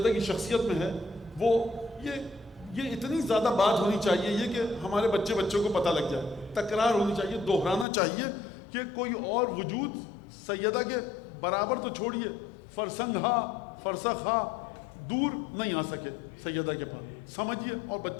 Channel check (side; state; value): right; drops out; at 7.9 s